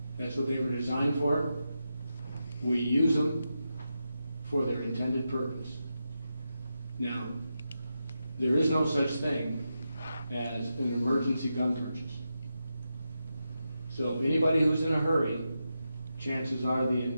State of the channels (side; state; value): both; inverted; correlation -0.88